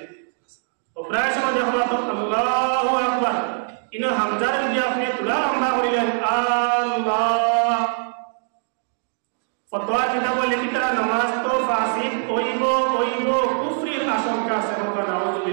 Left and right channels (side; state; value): left; silent; digital silence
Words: তো প্রায় সময় দেখবা তো আল্লাহু আকবার ইনো হামজার যদি আপনি তুলা লম্বা করিলেন আল্লাহ, ফতোয়া কিতাব লিখিত নামাজ তো ফাসিদ হইব হইব, কুফরির আশঙ্কা আছে, হোক